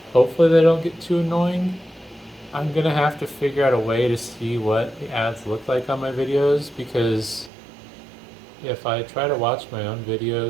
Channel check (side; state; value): left; drops out; at 7.5 s